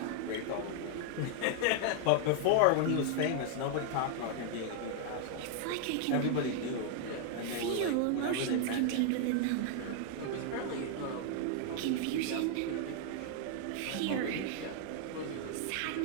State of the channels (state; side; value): different; both; correlation 0.00